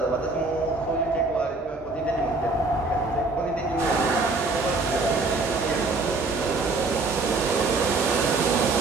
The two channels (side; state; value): left; quieter; 3.5 dB